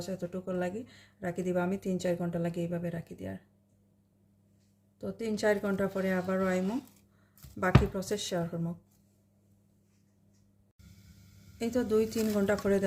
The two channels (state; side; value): identical; both; correlation 1.00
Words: এতটুকু লাগি রাখি দিবা। আমি 3-4 ঘন্টা লাগে এইভাবে রাখি দিয়ার। তো 3-4 ঘন্টা পরে আবারও আইমো, বাকি প্রসেস শেয়ার করবো। এই তো 2-3 ঘন্টা পরে